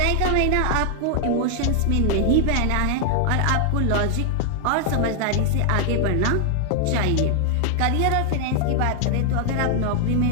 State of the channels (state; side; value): different; both; correlation 0.00